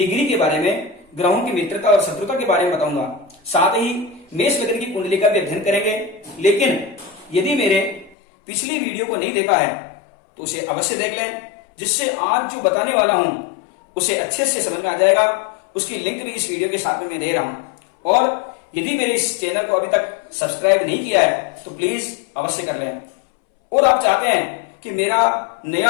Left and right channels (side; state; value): right; drops out; at 8.2 s